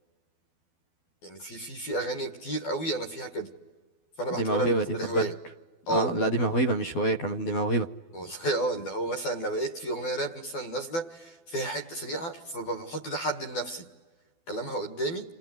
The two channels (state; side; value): late; right; 12 ms